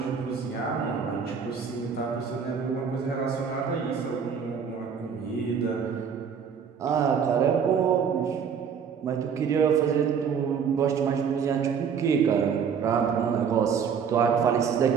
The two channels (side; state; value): left; quieter; 6.9 dB